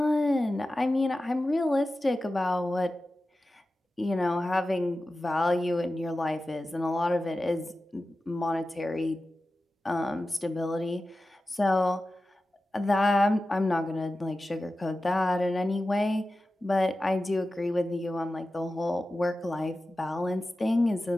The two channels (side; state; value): both; normal; correlation 0.94